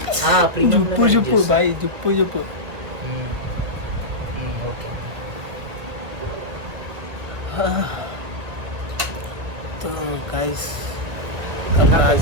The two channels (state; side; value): late; left; 1.5 ms